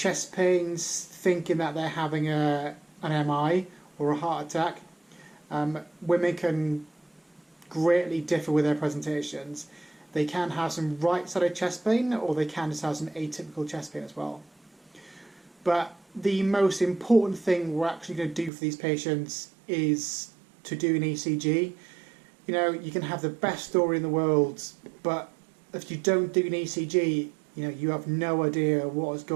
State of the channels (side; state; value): left; drops out; at 18.5 s